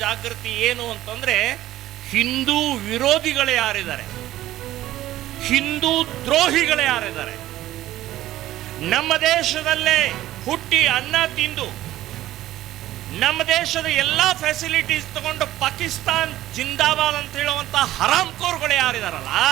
ಜಾಗೃತಿ ಏನು ಅಂತಂದರೆ, ಹಿಂದೂ ವಿರೋಧಿಗಳು ಯಾರಿದ್ದಾರೆ, ಹಿಂದೂ ದ್ರೋಹಿಗಳು ಯಾರಿದ್ದಾರೆ, ನಮ್ಮ ದೇಶದಲ್ಲೇ ಹುಟ್ಟಿ ಅನ್ನ ತಿಂದು ನಮ್ಮ ದೇಶದ ಎಲ್ಲ ಫೆಸಿಲಿಟೀಸ್ ತಗೊಂಡು ಪಾಕಿಸ್ತಾನ್ ಜಿಂದಾಬಾದ್ ಅಂತ ಹೇಳುವಂತ ಹರಾಮ್ಕೋರ್ಗಳು ಯಾರಿದಾರಲ್ಲ,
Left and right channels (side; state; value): left; quieter; 14.6 dB